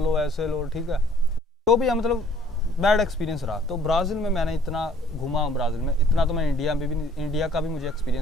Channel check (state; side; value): normal; both; correlation 0.58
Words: लो, ऐसे लो, ठीक है। तो भी मतलब बैड एक्सपीरियंस रहा। तो ब्राज़ील में मैंने इतना घुमा हूँ, ब्राज़ील में इतना तो मैं इंडिया में भी नहीं, इंडिया का भी मुझे